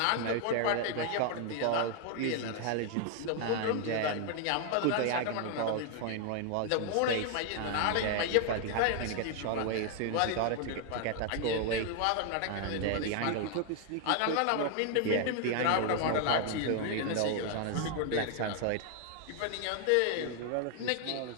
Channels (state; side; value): different; both; correlation 0.00